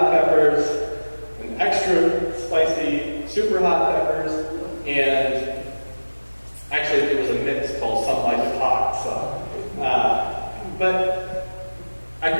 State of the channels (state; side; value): inverted; both; correlation -1.00